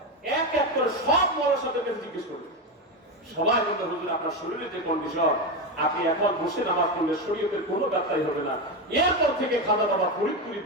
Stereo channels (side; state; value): both; normal; correlation 0.14